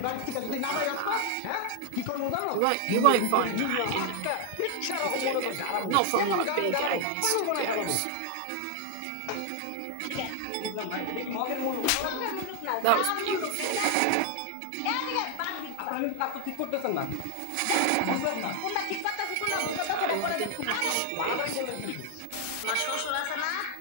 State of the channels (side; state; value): both; different; correlation 0.00